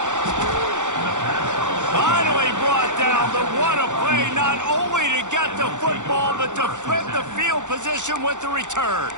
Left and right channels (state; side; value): late; left; 0.85 ms